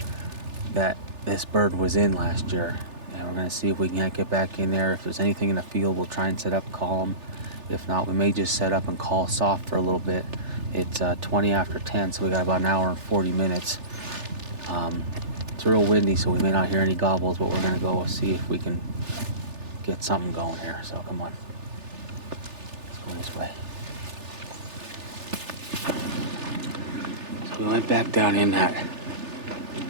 that this bird was in last year. And we're gonna see if we can get back in there. If there's anything in the field, we'll try and set up, call them. If not, we may just set up and call soft for a little bit. It's 20 after 10, so we got about an hour and 40 minutes. It's real windy, so we may not hear any gobbles, but we're gonna go see if we can get something going here. So come on, let's go this way. So we went back down in that,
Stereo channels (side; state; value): left; late; 3.4 ms